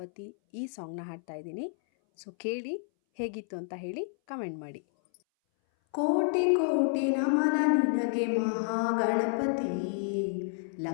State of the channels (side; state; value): right; silent; 58 dB below the other